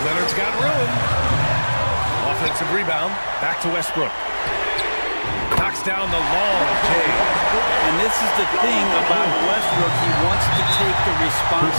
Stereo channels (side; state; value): both; inverted; correlation -1.00